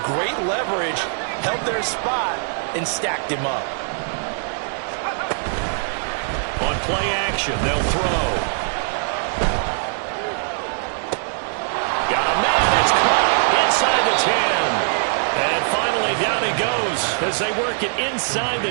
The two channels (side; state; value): left; silent; digital silence